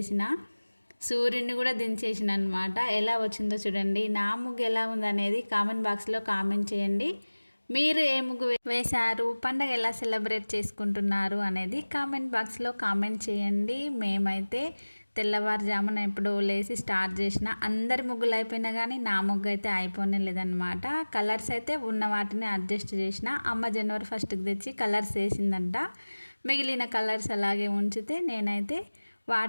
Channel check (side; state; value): both; inverted; correlation -1.00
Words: సూర్యుడిని కూడా దించేసిన అనమాట. ఎలా వచ్చిందో చూడండి. నా ముగ్గు ఎలా ఉందనేది కామెంట్ బాక్స్లో కామెంట్ చేయండి. మీరు ఏ ముగ్గు వేశారు, పండగ ఎలా సెలబ్రేట్ చేసుకుంటున్నారు అనేది కామెంట్ బాక్స్లో కామెంట్ చేయండి. మేమైతే తెల్లవారుజామున ఎప్పుడో లేసి స్టార్ట్ చేసిన. అందరి ముగ్గులు అయిపోయినా కానీ నా ముగ్గు అయితే అయిపోనే లేదనమాట. కలర్స్ అయితే ఉన్న వాటిని అడ్జస్ట్ చేసిన. అమ్మ జనవరి 1కి తెచ్చి కలర్స్ వేసిందంట. మిగిలిన కలర్స్ అలాగే ఉంచితే నేనైతే